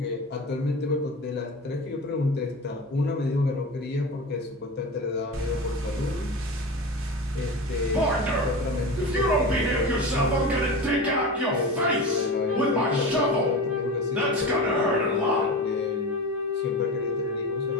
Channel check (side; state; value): both; normal; correlation 0.28